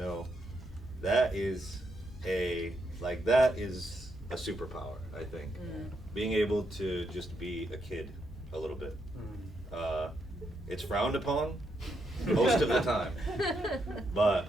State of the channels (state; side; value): normal; both; correlation 0.79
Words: that is a superpower, I think. Being able to just be a kid a little bit. It's frowned upon most of the time,